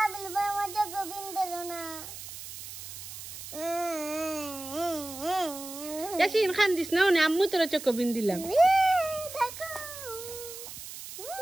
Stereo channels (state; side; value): noise; right; hiss, 11 dB below the sound